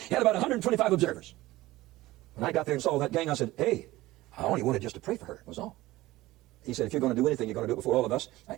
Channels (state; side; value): quieter; left; 17.8 dB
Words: had about 125 observers. When I got there and saw that gang, I said, hey, I only wanted just to pray for her, was all. He said, if you're going to do anything, you're going to do it before all of us.